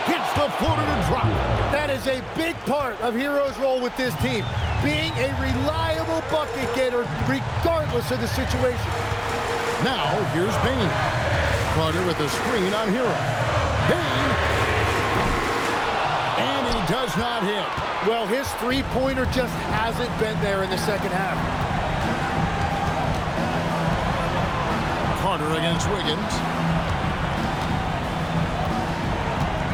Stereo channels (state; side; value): identical; both; correlation 1.00